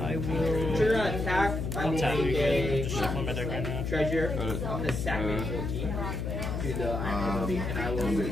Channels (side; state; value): left; noise; hum, 2 dB below the sound